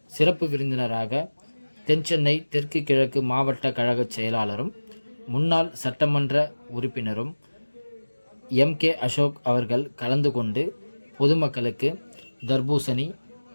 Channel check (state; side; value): inverted; both; correlation -1.00